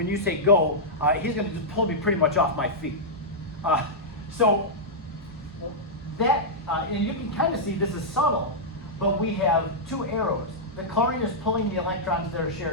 you say go, he's going to just pull me pretty much off my feet. So that, and you can kind of see this is subtle, but we have two arrows. The chlorine is pulling the electrons that are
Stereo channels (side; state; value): both; normal; correlation -0.09